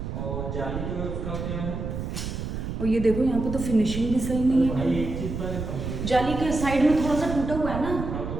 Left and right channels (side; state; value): right; noise; rumble, 5 dB below the sound